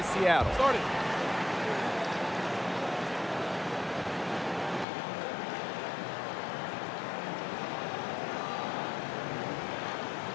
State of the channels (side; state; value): right; drops out; at 4.9 s